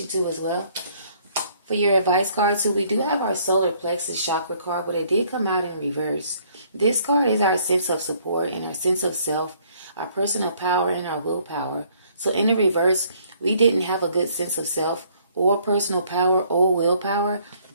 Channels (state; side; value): inverted; both; correlation -0.63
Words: too as well. For your advice card too, we do have our solar plexus chakra card, but it did come out in reverse. This card is our sense of support and our sense of self, our personal power and our willpower. So in the reverse, we didn't have a good sense of self or personal power or willpower